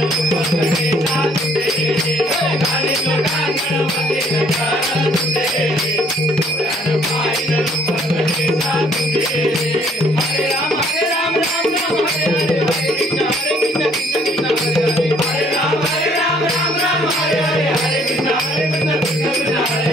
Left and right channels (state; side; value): normal; both; correlation 0.62